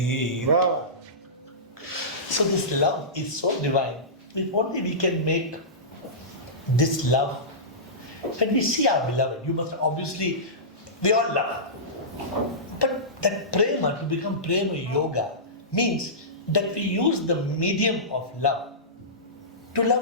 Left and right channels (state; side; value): normal; both; correlation -0.20